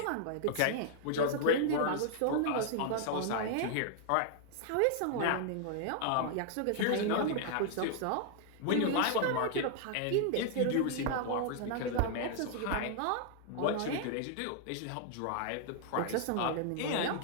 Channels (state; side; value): different; both; correlation 0.00